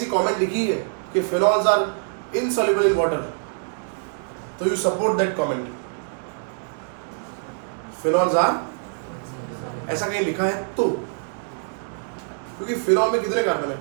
कमेंट लिखी है कि phenols are insoluble in water, तो you support that comment. Phenols are, ऐसा कहीं लिखा है तो, क्योंकि फिनॉल में कितने कार्बन है?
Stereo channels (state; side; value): silent; left; digital silence